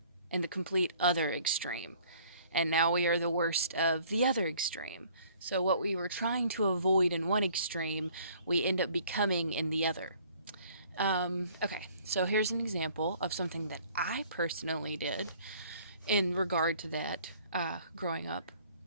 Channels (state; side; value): inverted; both; correlation -0.56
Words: and the complete other extreme. And now we are the worst of the other extreme. So what we were trying to avoid in one extreme, we end up becoming in the other. Okay, so here's an example of something that I personally did in regard to that growing up.